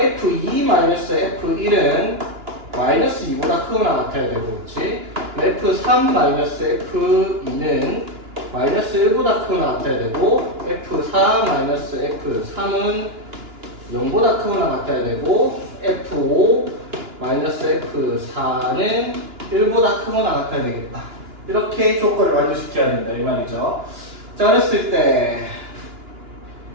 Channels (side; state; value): left; late; 2.9 ms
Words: 마이너스 f1은 마이너스 2보다 크거나 같아야 되고, 그렇지? f3 마이너스 f2는 마이너스 1보다 크거나 같아야 되고, f4 마이너스 f3은 0보다 크거나 같아야 되고, f5 마이너스 f4는 1보다 크거나 같아야 되겠다. 이렇게 조건을 완료시켜야 된다 이 말이죠. 자 그랬을 때